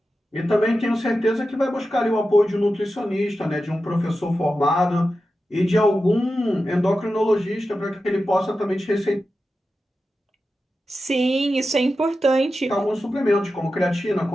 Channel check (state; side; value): normal; both; correlation 0.92